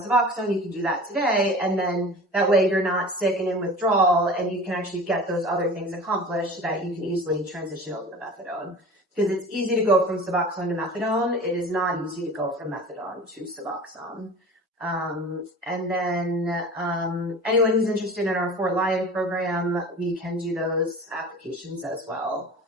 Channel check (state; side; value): normal; both; correlation 0.38